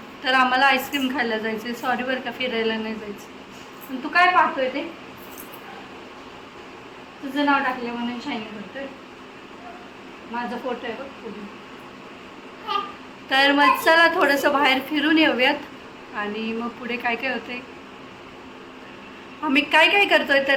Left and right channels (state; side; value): identical; both; correlation 1.00